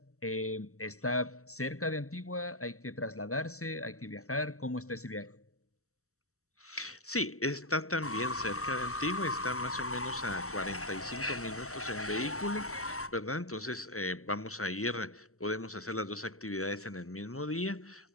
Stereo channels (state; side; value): late; right; 0.64 ms